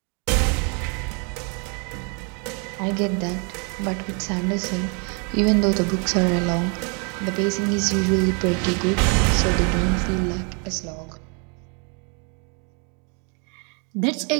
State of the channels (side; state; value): left; quieter; 36.4 dB